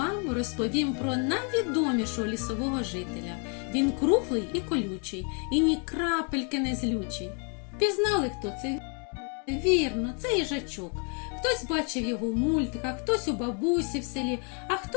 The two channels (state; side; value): quieter; right; 39.0 dB